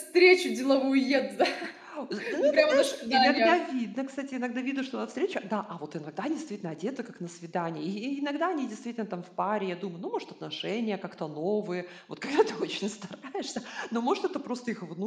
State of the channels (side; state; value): both; identical; correlation 1.00